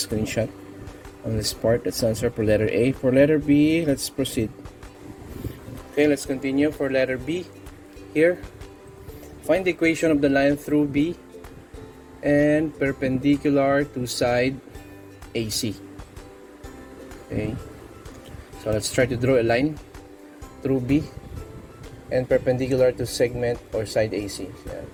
on this part. That's the answer for letter A. For letter B, let's proceed. Okay, let's continue for letter B. Here, find the equation of the line through B and perpendicular to side AC. Okay, so let's try to draw a line through B and perpendicular to segment or side AC. Yan.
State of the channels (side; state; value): both; identical; correlation 1.00